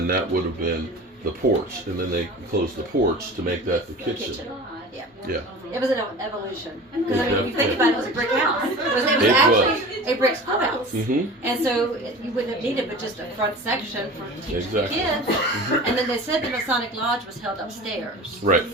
that would have been the porch. And then they closed the porch to make that the kitchen. Yeah. Yeah. It was an evolution. Because I mean, Yeah. if you think about it, it was a brick house. It was It actually a brick schoolhouse. Mm-hmm. And so you wouldn't have needed but just a front section for teaching Exactly. kids. And then they said the Masonic Lodge was held upstairs. Right.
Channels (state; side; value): normal; both; correlation 0.36